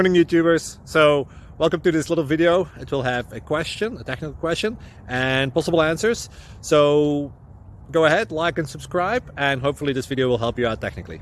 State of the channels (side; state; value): both; identical; correlation 1.00